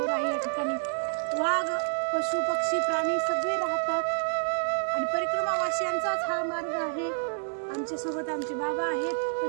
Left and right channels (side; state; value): left; silent; 59 dB below the other